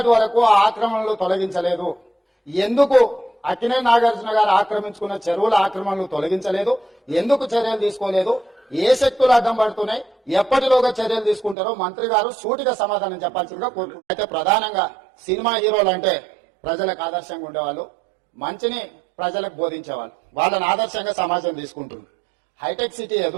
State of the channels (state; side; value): drops out; left; at 11.6 s